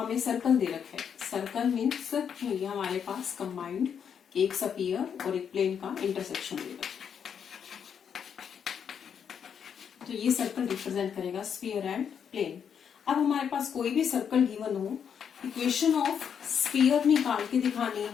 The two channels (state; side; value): quieter; right; 7.7 dB